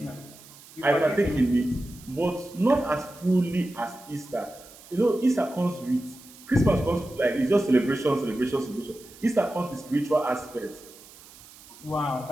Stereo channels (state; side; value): noise; right; hiss, 21 dB below the sound